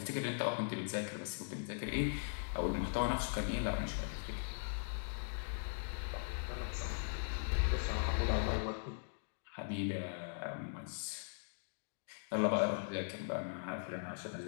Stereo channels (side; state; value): right; silent; digital silence